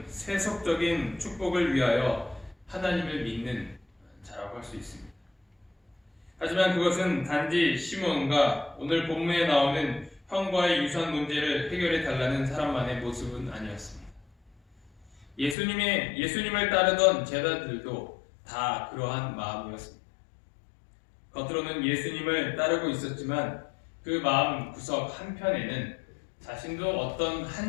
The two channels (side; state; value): right; drops out; at 15.6 s